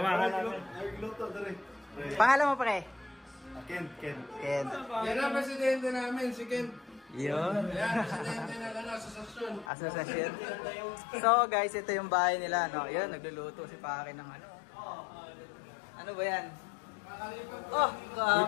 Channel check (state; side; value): drops out; right; at 9.7 s